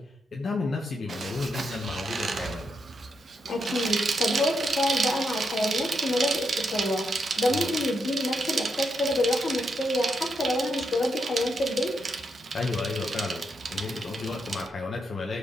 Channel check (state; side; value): normal; both; correlation 0.81